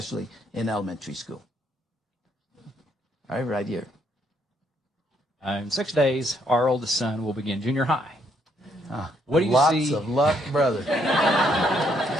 in elementary school. All right, right here. In 6 days, our oldest son will begin junior high. What do you see? Lots of luck, brother.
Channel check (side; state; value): both; normal; correlation 0.72